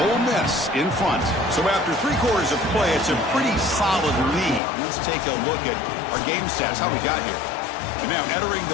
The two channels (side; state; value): right; drops out; at 4.6 s